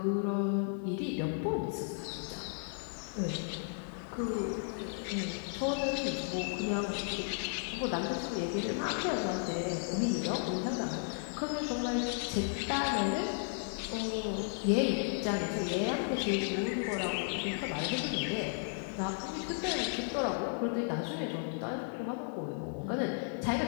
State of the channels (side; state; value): right; silent; digital silence